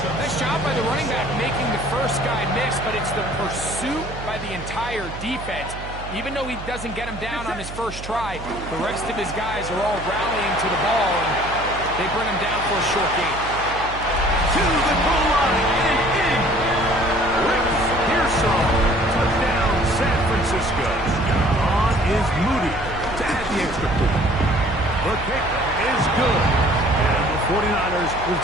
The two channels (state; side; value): noise; right; hum, 11 dB below the sound